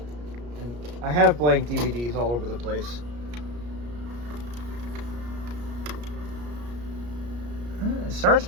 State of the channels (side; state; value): left; late; 34 ms